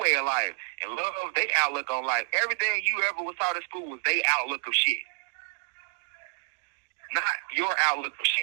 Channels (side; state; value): left; silent; digital silence